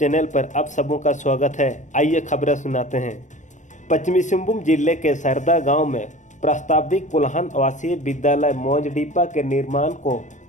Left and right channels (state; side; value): late; right; 0.36 ms